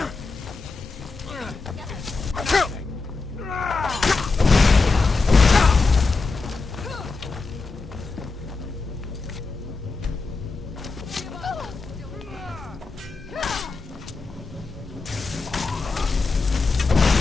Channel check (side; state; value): right; quieter; 4.1 dB